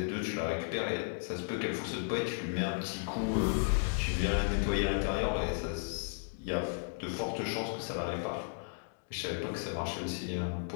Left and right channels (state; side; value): silent; right; digital silence